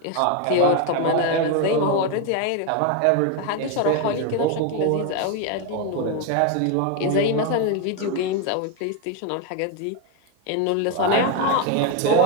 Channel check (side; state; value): both; different; correlation 0.02